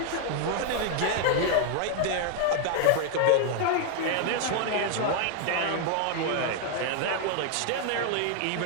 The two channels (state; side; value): different; both; correlation 0.00